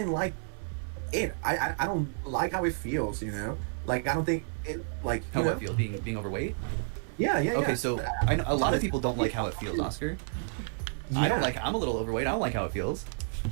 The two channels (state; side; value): silent; left; digital silence